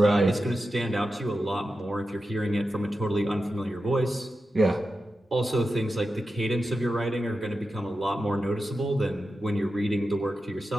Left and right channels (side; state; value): both; normal; correlation 0.91